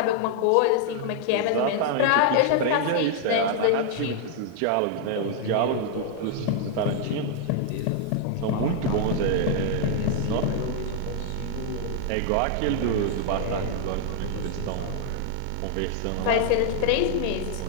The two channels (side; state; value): both; different; correlation 0.00